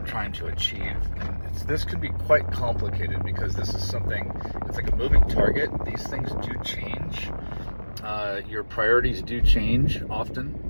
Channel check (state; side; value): inverted; both; correlation -1.00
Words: trying to achieve. And this can be quite complicated because this is something, it's like a moving target. These things do change. Your priorities do change